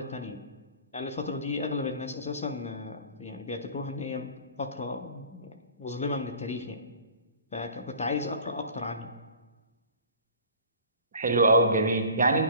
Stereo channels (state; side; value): inverted; both; correlation -0.45